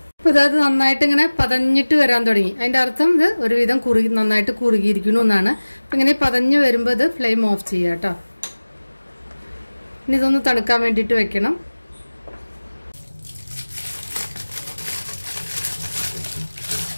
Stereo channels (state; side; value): inverted; both; correlation -1.00